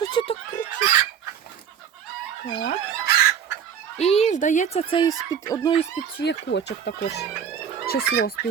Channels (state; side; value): quieter; left; 8.1 dB